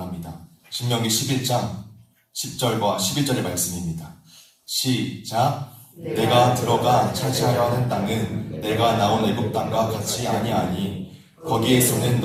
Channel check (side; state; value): both; identical; correlation 1.00